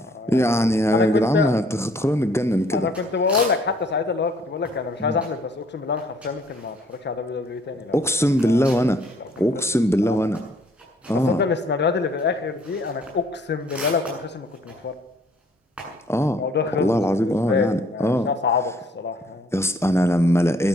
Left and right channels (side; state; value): both; normal; correlation 0.61